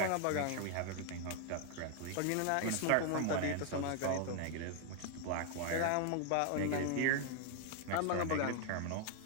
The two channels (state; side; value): different; both; correlation 0.00